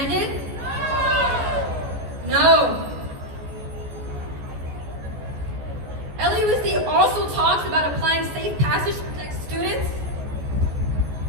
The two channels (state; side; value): late; left; 14 ms